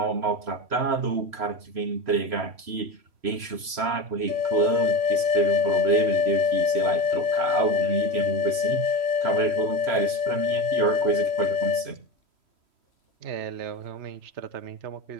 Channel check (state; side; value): late; left; 3.0 ms